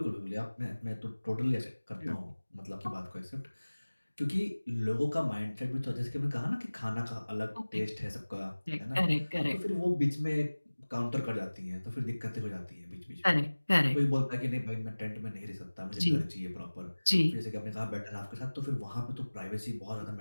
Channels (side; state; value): both; inverted; correlation -1.00